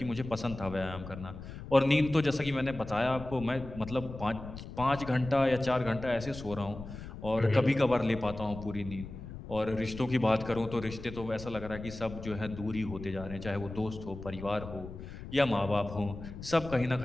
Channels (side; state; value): left; noise; rumble, 11 dB below the sound